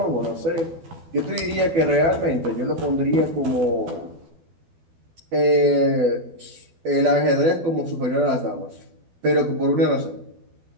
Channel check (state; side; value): late; left; 12 ms